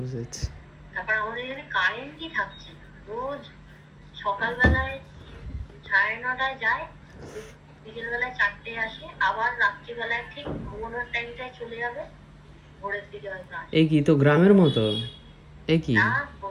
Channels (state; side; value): identical; both; correlation 1.00